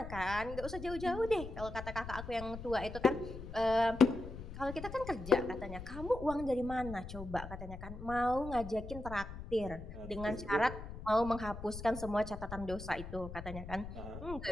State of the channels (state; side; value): noise; left; rumble, 10 dB below the sound